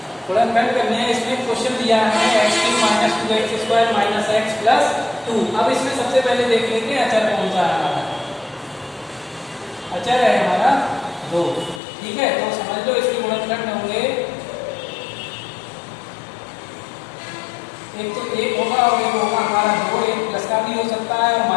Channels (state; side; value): drops out; right; at 11.8 s